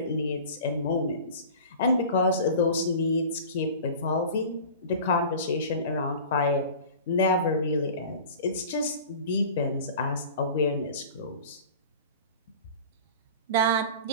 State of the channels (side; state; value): both; inverted; correlation -0.39